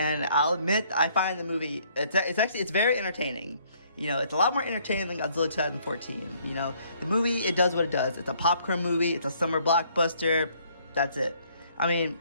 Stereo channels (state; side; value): inverted; both; correlation -0.65